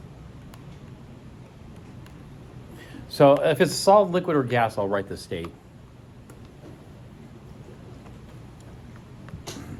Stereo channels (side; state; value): both; identical; correlation 1.00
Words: So if it's solid, liquid, or gas, I'll write the state.